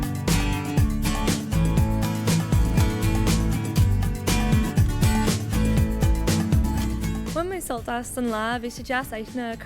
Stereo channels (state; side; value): identical; both; correlation 1.00